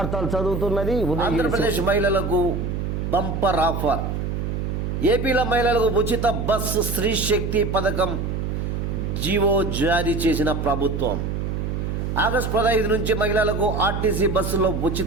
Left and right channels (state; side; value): noise; right; hum, 2 dB below the sound